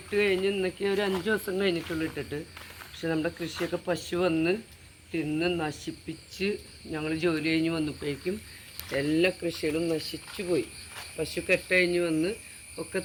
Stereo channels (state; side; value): identical; both; correlation 1.00